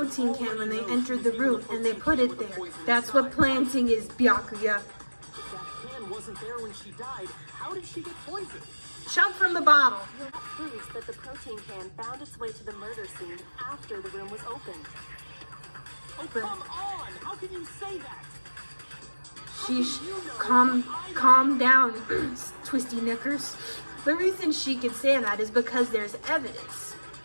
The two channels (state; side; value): inverted; both; correlation -1.00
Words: can when they entered the room, and they put it there. That's what planting is, Byakuya. If that can wasn't there when she died, how did she get poisoned? Jump from the bottle. That proves that the protein can found its way to the murder scene after the room was opened. Oh, come on! How can you say that? Sheesh, calm down, twisty knickers. The reason she could say that is because there's evidence.